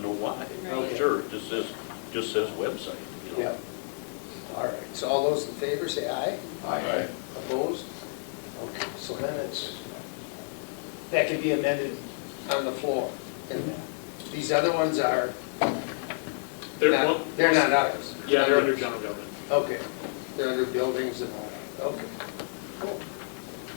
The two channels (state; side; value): silent; right; 58 dB below the other